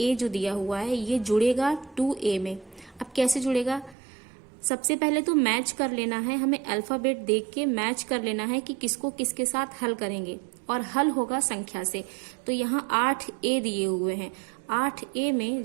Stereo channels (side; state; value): left; drops out; at 4.0 s